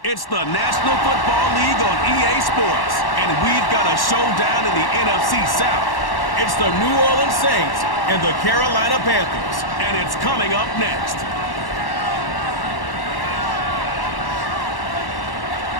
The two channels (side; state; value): right; late; 1.1 ms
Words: It's the National Football League on EA Sports, and we've got a showdown in the NFC South. It's the New Orleans Saints and the Carolina Panthers, and it's coming up next.